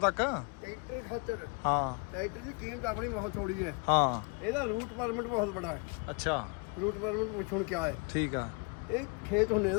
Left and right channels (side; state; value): right; quieter; 33.2 dB